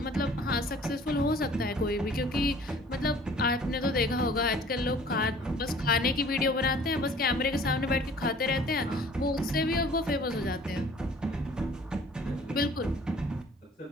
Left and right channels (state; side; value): normal; both; correlation 0.51